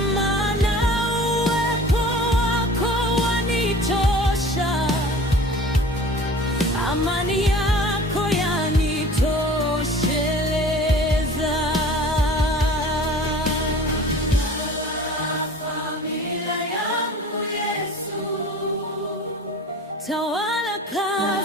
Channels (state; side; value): normal; both; correlation 0.43